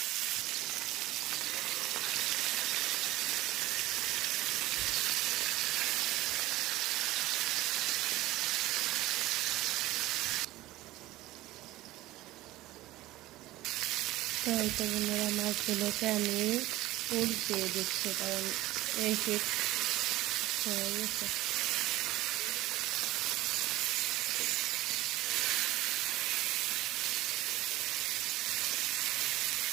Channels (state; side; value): quieter; left; 17.3 dB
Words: তো এই তো বন্ধুরা, মাছগুলোকে আমি উল্টিয়ে দিচ্ছি, কারণ এই শীত হয়ে গেছে।